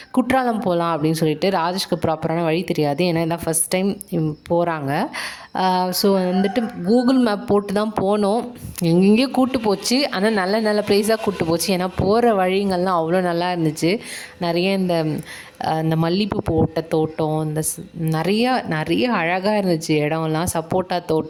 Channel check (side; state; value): both; identical; correlation 1.00